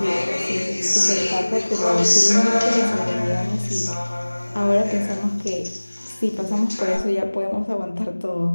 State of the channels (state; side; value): inverted; both; correlation -1.00